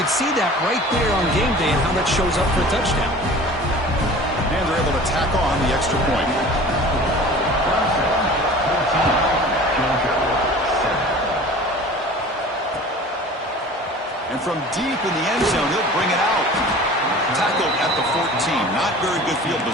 see that right there on game day and how that shows up for a touchdown. And they're able to tack on the extra point. And from deep in the end zone, he'll bring it out. Tackled at the 14. Not very good field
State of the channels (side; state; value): both; normal; correlation 0.42